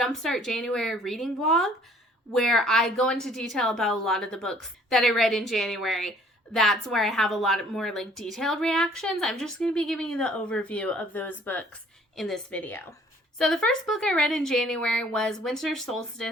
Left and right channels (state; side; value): normal; both; correlation 0.57